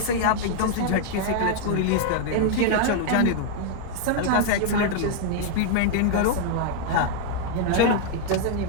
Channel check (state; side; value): different; both; correlation -0.01